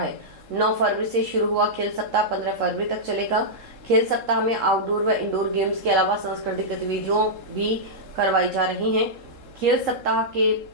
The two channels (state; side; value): late; left; 3.7 ms